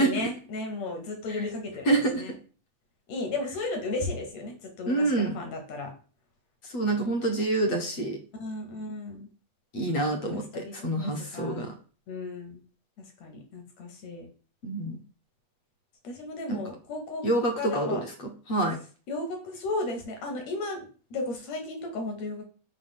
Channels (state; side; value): late; right; 8.2 ms